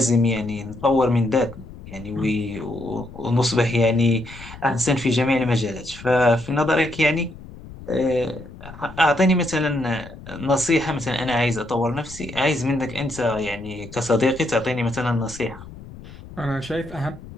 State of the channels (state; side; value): noise; left; rumble, 16 dB below the sound